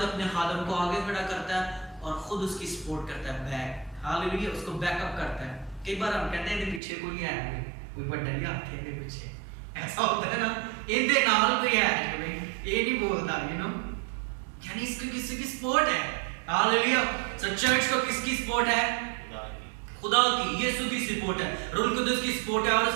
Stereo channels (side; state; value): left; drops out; at 6.8 s